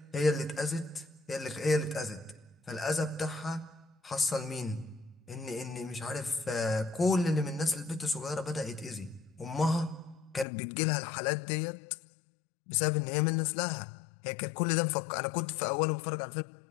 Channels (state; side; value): drops out; right; at 10.5 s